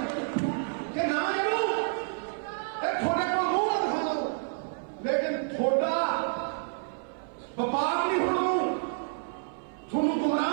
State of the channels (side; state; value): left; silent; 58 dB below the other